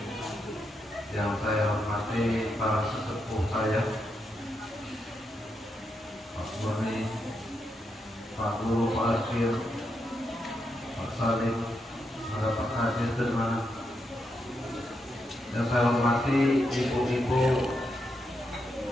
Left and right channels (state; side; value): normal; both; correlation 0.83